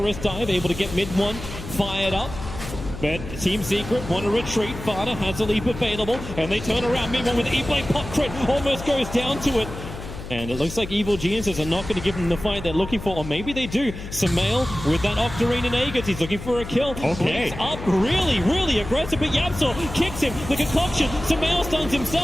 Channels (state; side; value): noise; left; hum, 11 dB below the sound